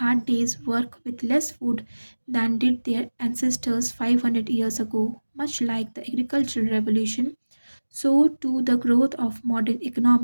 day's work with less food than did their ancestors 500 years ago. Much like the agricultural revolution, so too the growth of modern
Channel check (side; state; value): both; inverted; correlation -1.00